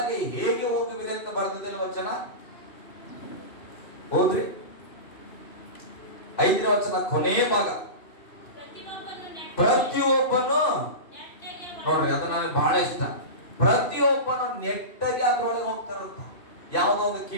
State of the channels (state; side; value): late; right; 2.7 ms